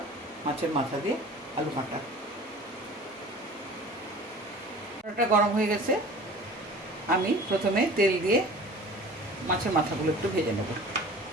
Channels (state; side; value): normal; both; correlation 0.42